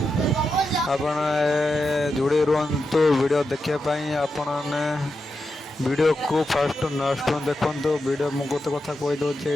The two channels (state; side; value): normal; both; correlation 0.88